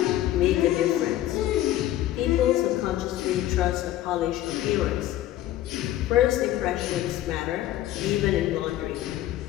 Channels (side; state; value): right; quieter; 13.8 dB